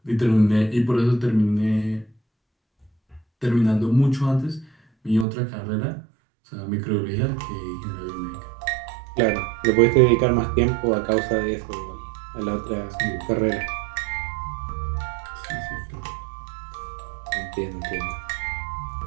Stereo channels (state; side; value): drops out; left; at 5.2 s